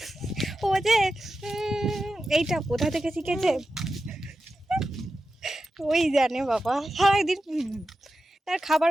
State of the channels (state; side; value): normal; both; correlation 0.91